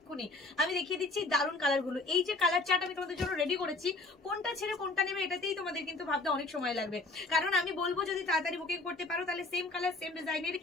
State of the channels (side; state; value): right; quieter; 3.3 dB